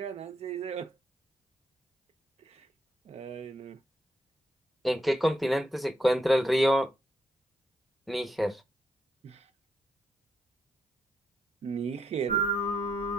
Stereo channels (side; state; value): both; normal; correlation 0.79